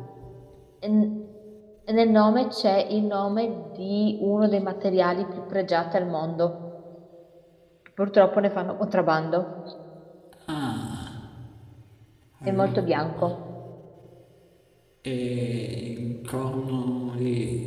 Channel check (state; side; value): identical; both; correlation 1.00